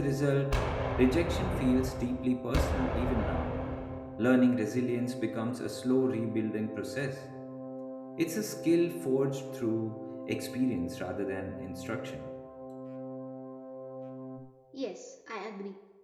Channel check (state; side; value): identical; both; correlation 1.00